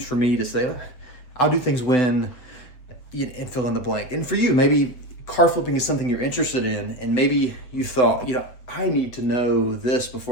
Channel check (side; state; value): right; late; 8.0 ms